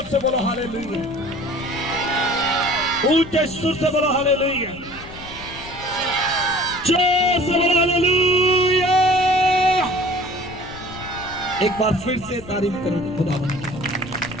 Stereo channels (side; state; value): left; noise; rumble, 16 dB below the sound